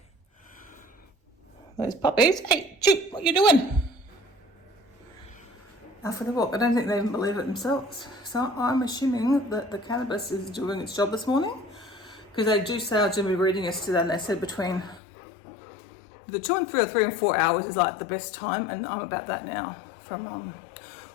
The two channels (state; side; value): drops out; right; at 15.0 s